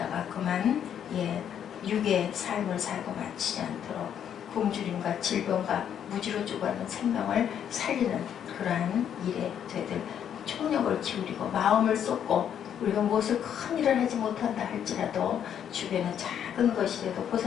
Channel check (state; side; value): quieter; right; 9.1 dB